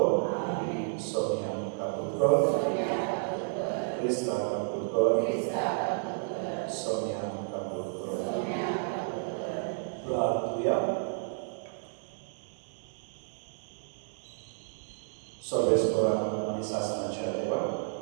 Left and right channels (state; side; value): silent; left; digital silence